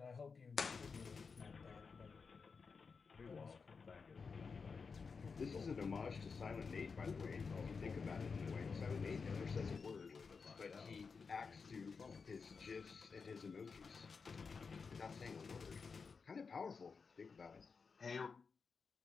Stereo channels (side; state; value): right; quieter; 5.1 dB